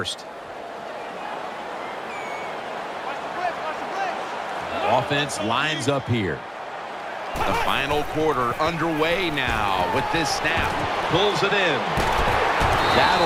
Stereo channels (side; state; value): both; identical; correlation 1.00